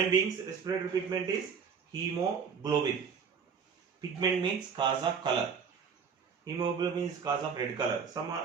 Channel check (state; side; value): quieter; left; 6.3 dB